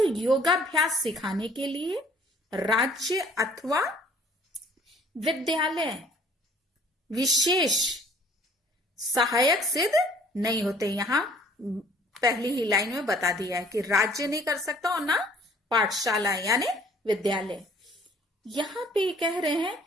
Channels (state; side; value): normal; both; correlation 0.55